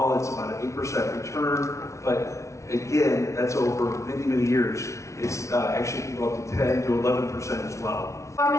it's about an 8% return, but again, that's over many, many years. It's actually can go up to 10 to 11% as well. For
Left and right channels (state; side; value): late; right; 0.14 ms